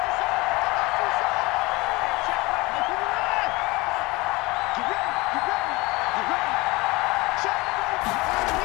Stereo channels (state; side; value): quieter; right; 23.0 dB